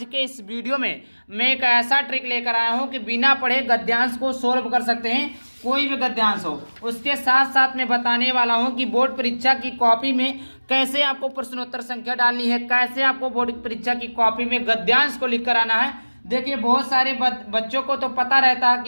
के इस वीडियो में मैं एक ऐसा ट्रिक लेकर आया हूं कि बिना पढ़े गद्यांश को सोल्व कर सकते हैं, कोई भी गद्यांश हो। उसके साथ साथ मैं बताने वाला हूं कि बोर्ड परीक्षा की कॉपी में कैसे आपको प्रश्नोत्तर संख्या डालनी है, कैसे आपको बोर्ड परीक्षा की कॉपी में गद्यांश को लिख कर आना है। देखिए बहुत सारे बच्चों को तो पता रहता है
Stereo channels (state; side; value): inverted; both; correlation -1.00